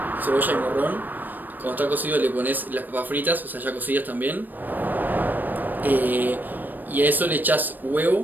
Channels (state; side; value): late; left; 0.089 ms